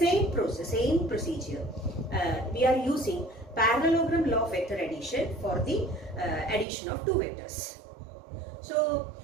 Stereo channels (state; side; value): drops out; left; at 6.7 s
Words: process, same procedure, we are using parallelogram law of vector addition for the addition of two vectors. So,